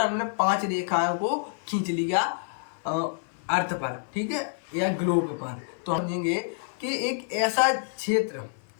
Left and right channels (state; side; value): silent; right; 59 dB below the other